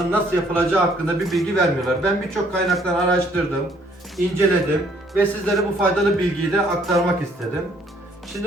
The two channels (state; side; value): normal; both; correlation 0.63